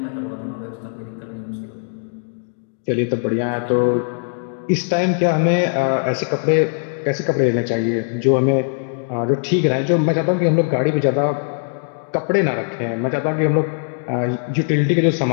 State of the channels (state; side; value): silent; right; digital silence